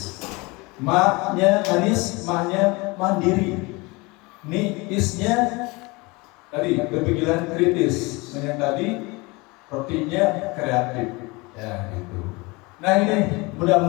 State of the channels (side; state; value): right; quieter; 25.3 dB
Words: Maknya manis, maknya mandiri. Nih isnya tadi berpikiran kritis. Nah, yang tadi rotinya kreatif. Ya, gitu. Nah, ini